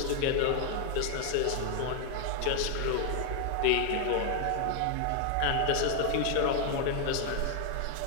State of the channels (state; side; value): different; both; correlation 0.00